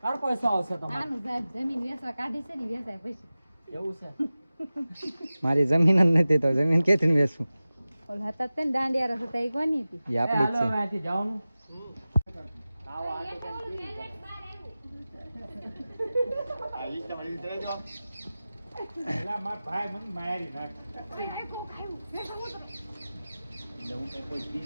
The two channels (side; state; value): both; inverted; correlation -0.96